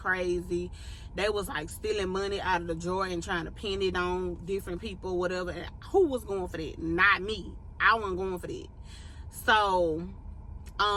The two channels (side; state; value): both; identical; correlation 1.00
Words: They was like stealing money out of the drawer and trying to pin it on different people, whatever. And who was going for that? Not me. I wasn't going for that. So,